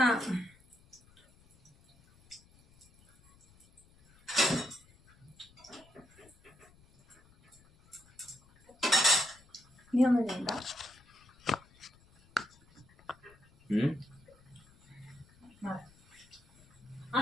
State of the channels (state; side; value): noise; left; rumble, 28 dB below the sound